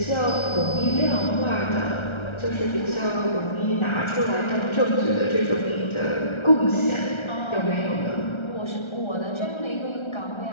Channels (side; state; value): right; late; 1.3 ms